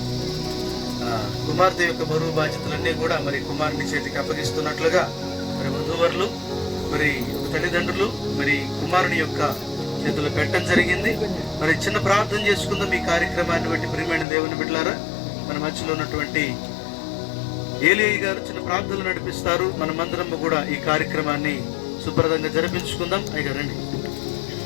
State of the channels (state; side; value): drops out; right; at 14.2 s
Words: కుమార్తె యొక్క బరువు బాధ్యతలన్నీ కూడా మరి కుమారుని చేతికి అప్పగిస్తున్నట్లుగా మరి వధూవరులు మరి తల్లిదండ్రులు మరి కుమారుని యొక్క చేతులు పెట్టడం జరిగింది. మరి చిన్న ప్రార్థన చేసుకుందాం ఈ కార్యక్రమాన్ని బట్టి. ప్రియమైన దేవుని బిడ్డలారా, మన మధ్యలో ఉన్నటువంటి ఏలియా గారు చిన్న ప్రార్థనలు నడిపిస్తారు. మనమందరం కూడా ఈ కార్యక్రమాన్ని శుభ్రతంగా జరిపించుకుందాం. అయ్యారండి.